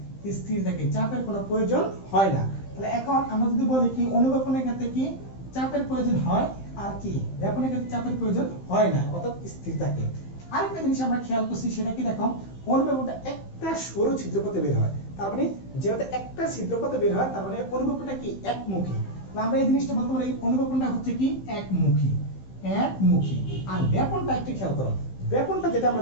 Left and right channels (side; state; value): right; late; 15 ms